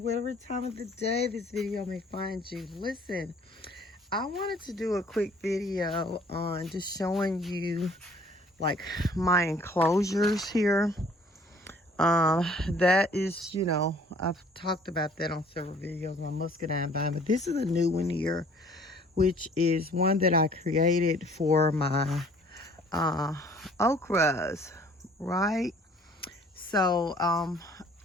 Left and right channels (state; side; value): normal; both; correlation 0.56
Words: whatever time of the day this video may find you. Listen, I wanted to do a quick video on just showing you like my enclosures here. That is, I've talked about that on several videos, my muscadine vine, but this is a new one here, which is one that I created for my okras, right? So,